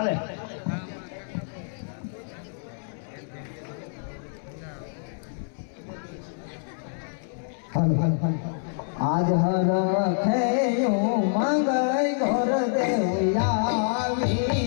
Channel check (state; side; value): silent; right; 60 dB below the other